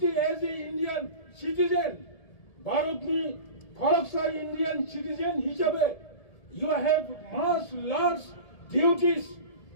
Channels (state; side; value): late; right; 1.7 ms